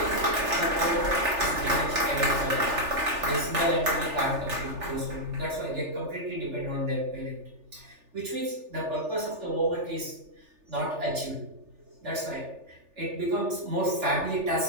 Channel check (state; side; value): late; left; 3.4 ms